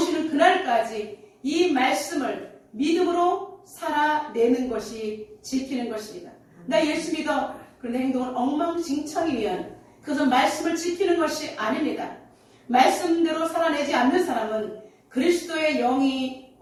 그날까지 이 말씀을 믿음으로 살아내는 것이 지키는 것입니다. 나 예수 믿어. 그런데 행동은 엉망진창이면 그것은 말씀을 지키는 것이 아닙니다. 말씀대로 살아내지 않는 사람은 그리스도의 영이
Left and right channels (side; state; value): both; identical; correlation 1.00